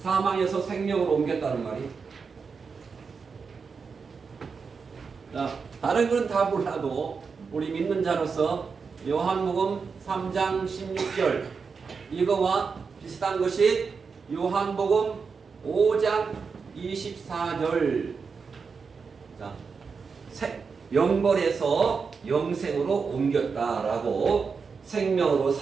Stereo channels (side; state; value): left; quieter; 5.3 dB